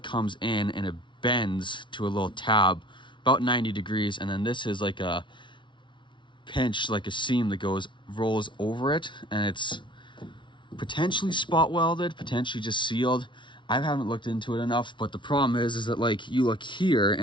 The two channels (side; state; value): right; late; 0.24 ms